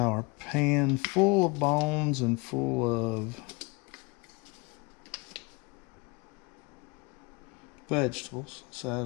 pan full of bones and full of vegetables. Let's add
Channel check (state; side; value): quieter; right; 27.8 dB